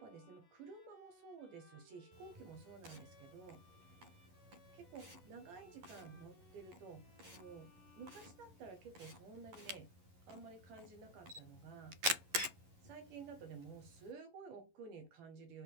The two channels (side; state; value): left; late; 11 ms